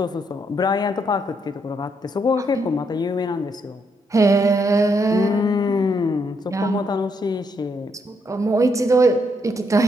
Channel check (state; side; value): normal; both; correlation 0.76